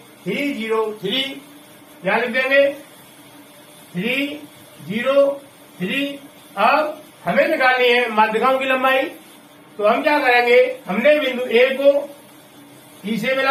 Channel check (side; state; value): both; identical; correlation 1.00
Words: 3, 0, 3। क्या लिख देंगे 3, 0, 3। अब हमें निकालनी है माध्यिकाओं की लंबाई, तो हम क्या करेंगे, हमने बिंदु ए को ई से